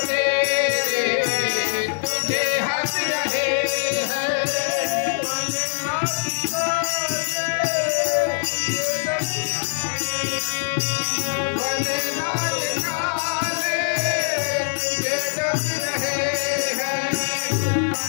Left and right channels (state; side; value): silent; right; digital silence